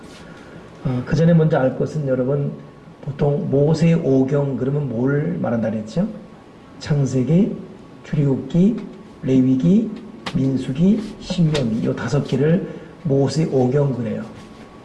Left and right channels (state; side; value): identical; both; correlation 1.00